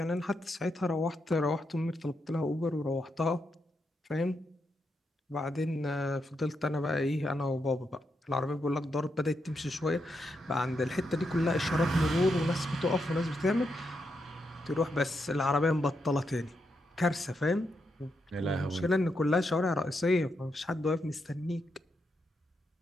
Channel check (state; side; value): normal; both; correlation 0.82